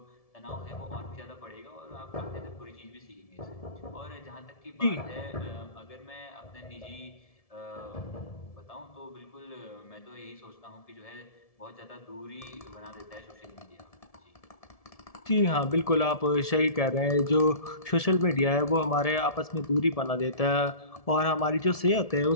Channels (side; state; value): right; late; 1.7 ms